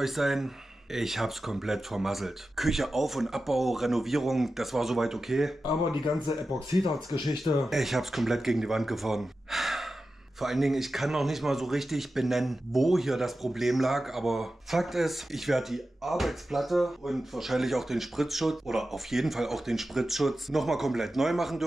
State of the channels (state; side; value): normal; both; correlation 0.93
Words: sein. Ich hab's komplett vermasselt. Küche Auf- und Abbau, Renovierung, das war soweit okay. Aber die ganze Epoxidharz-Geschichte, ich hab's komplett gegen die Wand gefahren. Vor allen Dingen, ich kann noch nicht mal so richtig benennen, wo hier das Problem lag, aber Fakt ist, ich werde die Arbeitsplatte und wahrscheinlich auch den Spritzschutz oder auf jeden Fall auch den Spritzschutz nochmal komplett neu machen